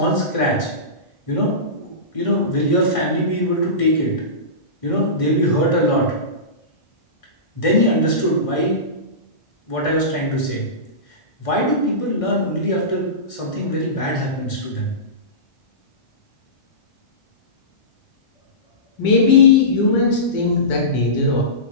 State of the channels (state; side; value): late; right; 1.6 ms